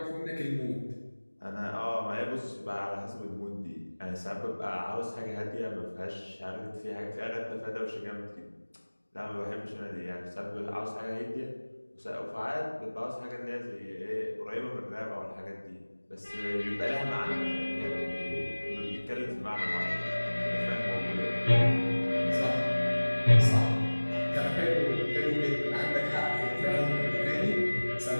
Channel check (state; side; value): inverted; both; correlation -1.00